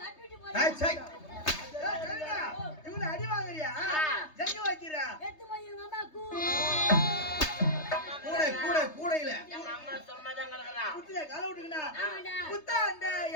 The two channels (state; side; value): late; right; 3.3 ms